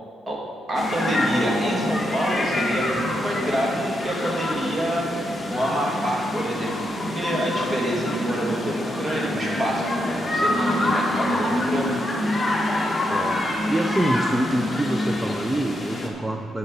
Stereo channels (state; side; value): normal; both; correlation 0.82